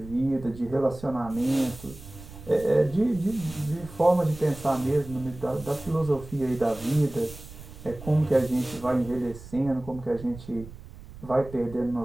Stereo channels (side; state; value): right; noise; rumble, 16 dB below the sound